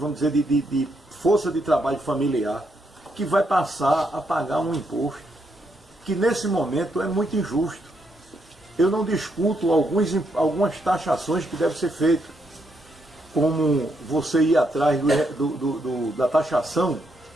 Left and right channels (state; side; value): normal; both; correlation 0.77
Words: dizer, de força de trabalho familiar, que vai passar a pagar um imposto, que nesse momento é muito injusto. Eu não discuto algumas taxações que devem ser feitas, como você ir atrás da taxação,